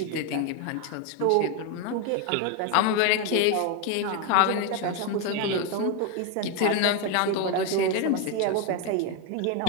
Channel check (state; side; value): different; both; correlation 0.02